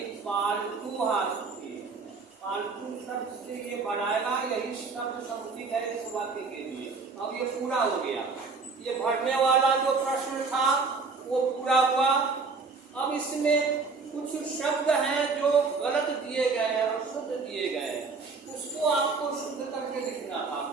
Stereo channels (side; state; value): left; quieter; 4.4 dB